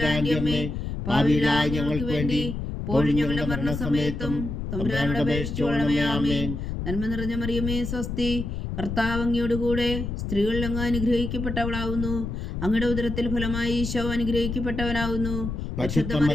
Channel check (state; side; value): noise; left; rumble, 4 dB below the sound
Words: അമ്മേ, പാപികളായ ഞങ്ങൾക്ക് വേണ്ടി ഇപ്പോഴും ഞങ്ങളുടെ മരണസമയത്തും തമ്പുരാനോട് അപേക്ഷിച്ചുകൊള്ളണമേ. ആമേൻ. നന്മ നിറഞ്ഞ മറിയമേ സ്വസ്തി, കർത്താവ് അങ്ങയോടുകൂടെ സ്ത്രീകൾ അങ്ങ് അനുഗ്രഹിക്കപ്പെട്ടവളാവുന്നു. അങ്ങയുടെ ഉദരത്തിൽ ഫലമായി ഈശോ അനുഗ്രഹിക്കപ്പെട്ടവനാവുന്നു. പരിശുദ്ധ